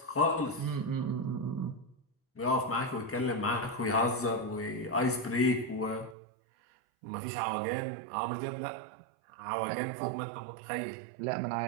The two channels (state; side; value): drops out; left; at 6.2 s